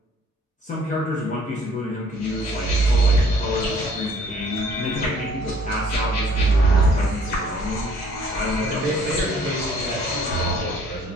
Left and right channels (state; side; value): normal; both; correlation 0.58